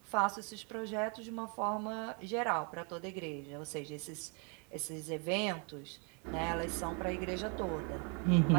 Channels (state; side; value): quieter; left; 36.2 dB